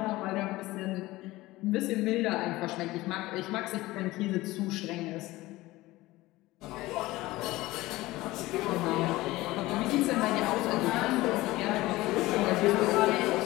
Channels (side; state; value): right; quieter; 18.7 dB